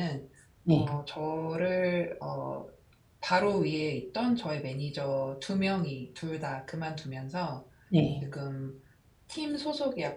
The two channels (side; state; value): both; identical; correlation 1.00